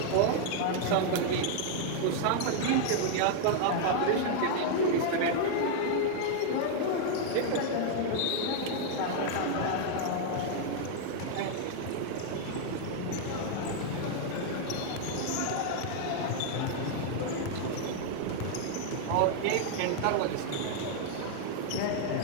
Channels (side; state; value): both; different; correlation 0.00